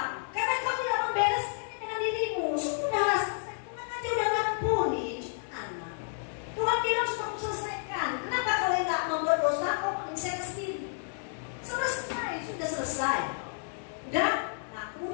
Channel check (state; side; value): silent; right; digital silence